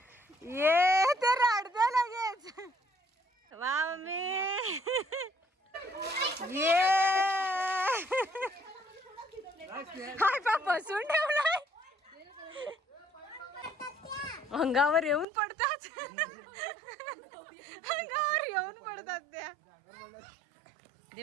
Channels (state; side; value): drops out; left; at 15.2 s